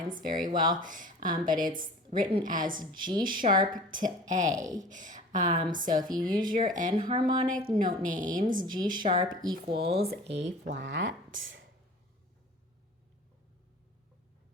very well, but it's written as G sharp to A. So if you use your enharmonic note names, G sharp equals A flat.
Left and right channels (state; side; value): normal; both; correlation 0.42